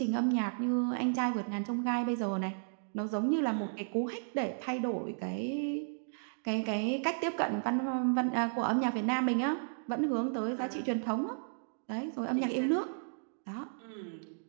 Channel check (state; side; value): silent; left; digital silence